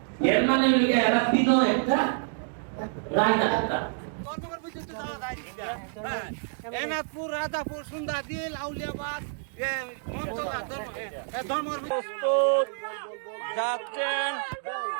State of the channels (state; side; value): silent; left; digital silence